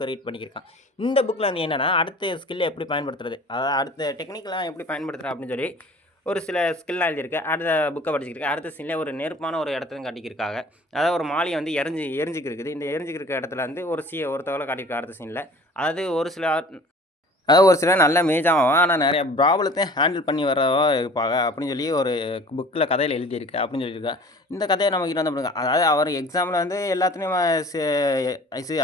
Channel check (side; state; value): both; normal; correlation 0.46